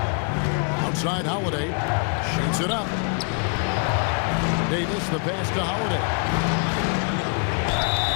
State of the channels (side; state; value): right; quieter; 38.9 dB